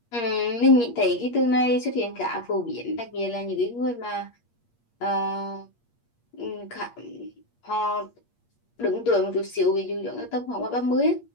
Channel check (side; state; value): right; late; 8.5 ms